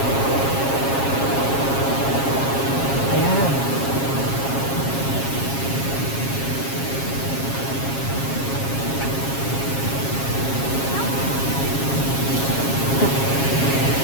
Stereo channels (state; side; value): late; right; 7.4 ms